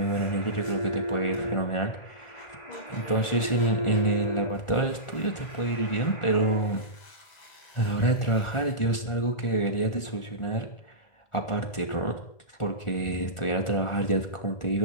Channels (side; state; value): right; late; 1.4 ms